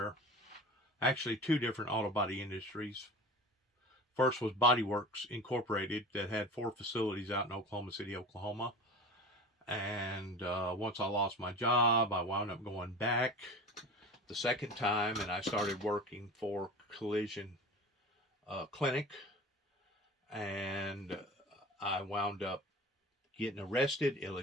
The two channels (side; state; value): both; normal; correlation 0.36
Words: actually two different auto body industries. First was Body Works Incorporated that had 4 facilities out in Oklahoma City, Oklahoma. And once I lost my job, I wound up going back the second time, and I started working for Collision Clinic. And I wound up getting arrested